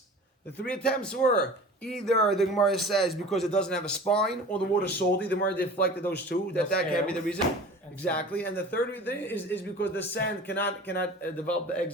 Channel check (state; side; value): normal; both; correlation 0.40